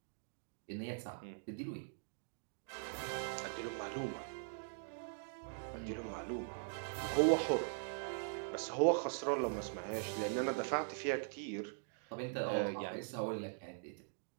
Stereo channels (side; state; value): left; silent; digital silence